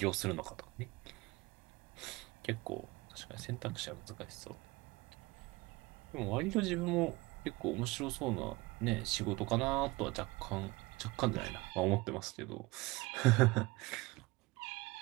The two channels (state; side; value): quieter; left; 22.8 dB